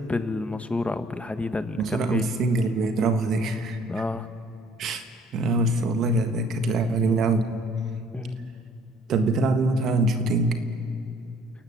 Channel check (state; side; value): normal; both; correlation 0.58